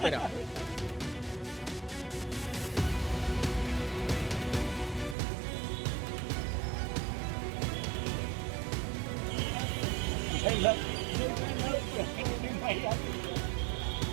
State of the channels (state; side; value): drops out; left; at 5.2 s